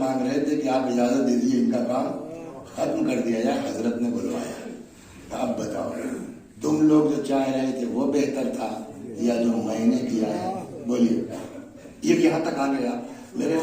رہے تھے کہ آپ اجازت دے دیجیے ان کا کام ختم کر دیا جائے، حضرت نے بلوایا، اب بتاؤ تم لوگ جو چاہ رہے تھے وہ بہتر تھا یا جو میں نے کیا ہے؟ بولیے۔ یہ یہاں تک آ گیا، میرے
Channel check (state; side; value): identical; both; correlation 1.00